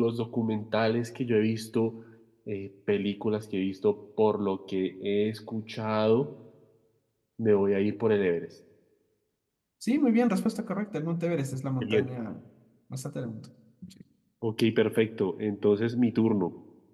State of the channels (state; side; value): identical; both; correlation 1.00